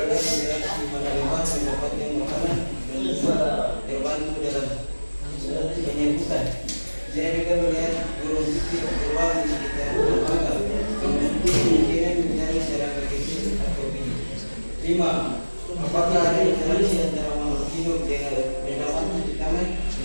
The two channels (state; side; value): inverted; both; correlation -1.00